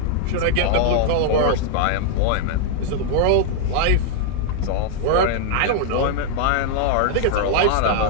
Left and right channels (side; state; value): both; different; correlation 0.00